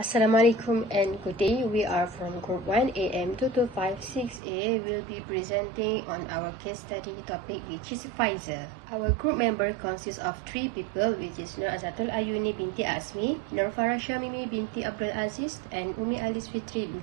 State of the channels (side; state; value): left; drops out; at 4.4 s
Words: and good day. We are from Group 1 AM2256A. We'll be presenting on our case study topic, which is Pfizer. Our group member consists of 3 people, which is NAZATUL AYUNI binti AZMI, NURFARA SYAMIMI binti AZIZ, and FITRI